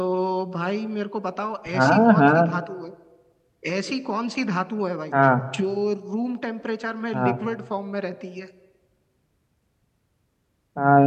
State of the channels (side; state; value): both; identical; correlation 1.00